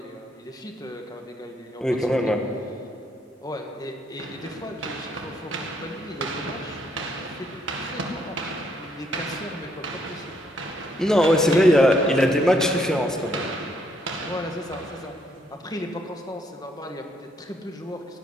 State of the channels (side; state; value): both; normal; correlation 0.71